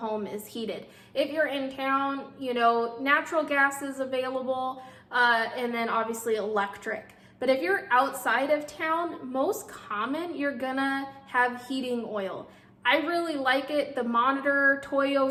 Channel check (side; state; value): both; identical; correlation 1.00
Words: is heated. If you're in town, natural gas is available, and then obviously electric. But if you're outside of town, most common, you're gonna have heating oil. I really like it. The Monitor, Toyo